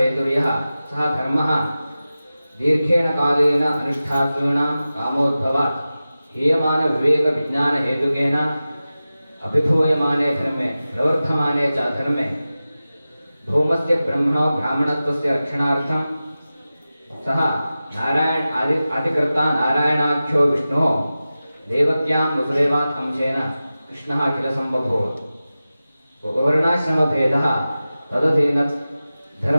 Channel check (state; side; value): inverted; both; correlation -0.95